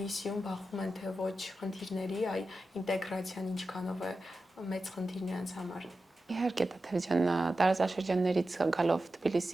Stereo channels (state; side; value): normal; both; correlation 0.92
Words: բախվում են թե ոչ խնդիրների, ինտեգրացիան ինչքանով է մեծ խնդիր նրանց համար։ Իհարկե, Տաթև ջան, տարածաշրջաններից գալով